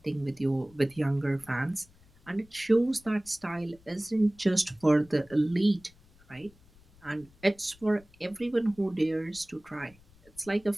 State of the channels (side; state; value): left; noise; rumble, 27 dB below the sound